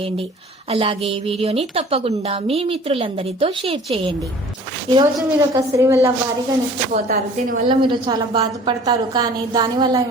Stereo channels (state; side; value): normal; both; correlation 0.48